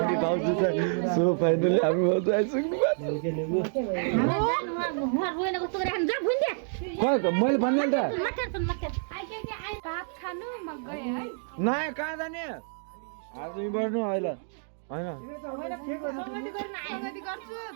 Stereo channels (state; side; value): silent; left; digital silence